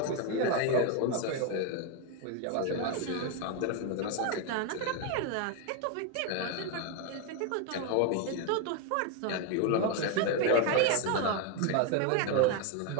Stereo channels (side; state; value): both; different; correlation 0.01